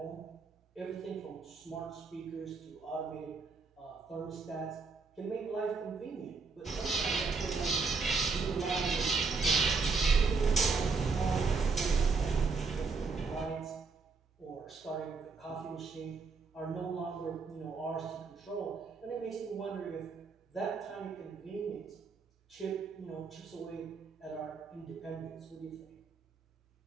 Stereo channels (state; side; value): quieter; left; 4.6 dB